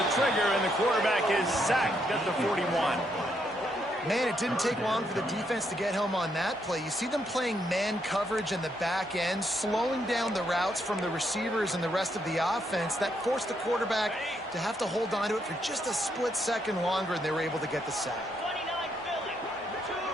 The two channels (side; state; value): both; normal; correlation 0.76